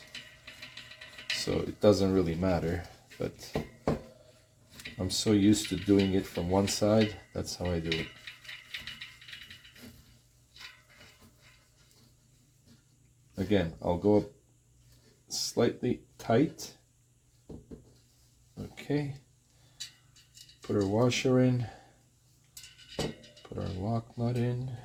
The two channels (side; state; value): both; identical; correlation 1.00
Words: So it doesn't really matter, but I'm so used to doing it from one side, that's how I do it. Again, I'll go up slightly tight. Okay. Put our washer in. Put our lock nut in.